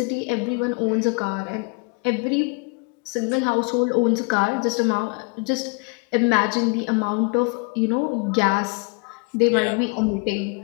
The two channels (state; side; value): quieter; right; 32.8 dB